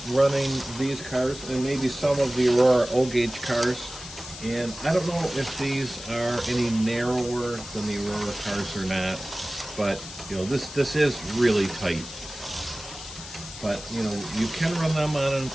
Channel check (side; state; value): left; noise; hiss, 13 dB below the sound